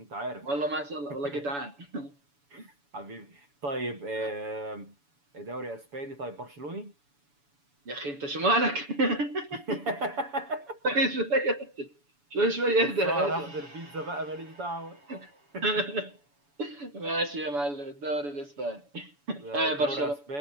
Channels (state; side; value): late; left; 7.0 ms